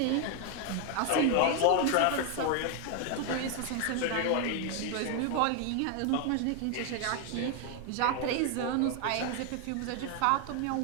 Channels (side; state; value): both; different; correlation 0.00